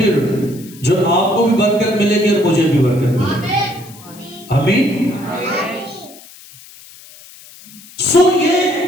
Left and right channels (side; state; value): left; noise; hiss, 21 dB below the sound